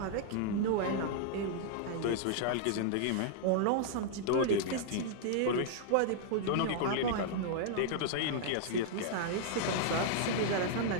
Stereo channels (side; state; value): both; different; correlation -0.01